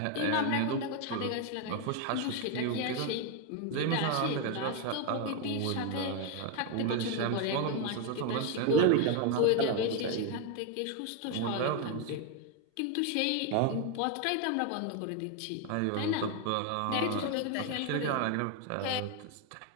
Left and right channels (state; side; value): different; both; correlation 0.01